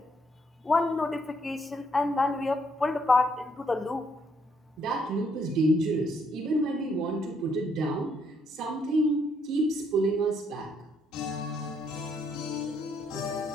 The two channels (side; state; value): both; normal; correlation 0.72